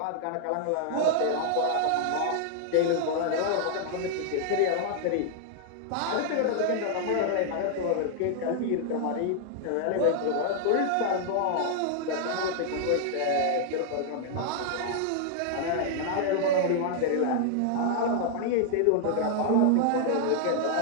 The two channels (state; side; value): different; both; correlation -0.01